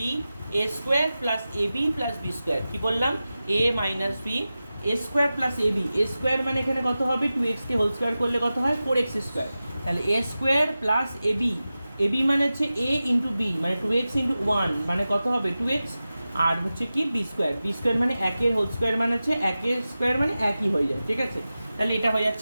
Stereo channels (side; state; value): both; inverted; correlation -0.94